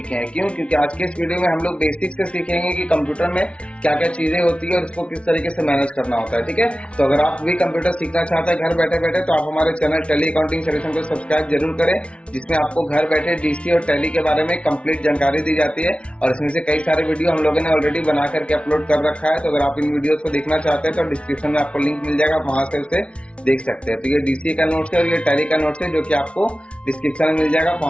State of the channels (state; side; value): late; right; 0.060 ms